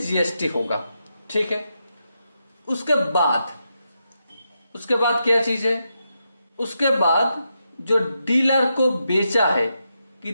होगा, ठीक है? उसके बाद क्या चीज है? उसके बाद जो डीलर को बेचा है,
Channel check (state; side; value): inverted; both; correlation -0.84